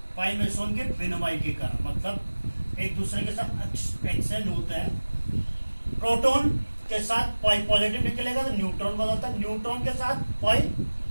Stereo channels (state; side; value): inverted; both; correlation -1.00